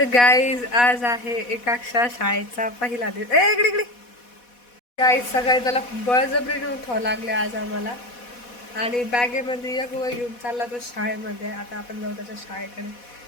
आज आहे एकाक्षा शाळेचा पहिला दिवस इकडे इकडे गाईज सकाळी त्याला बळजबरीने उठावं लागले आज आम्हाला आणि बॅगेमध्ये एक वय घेऊन चालला तो शाळेमध्ये. आता आपण जाऊ त्याच्या शाळेकडे.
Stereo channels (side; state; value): right; late; 4.1 ms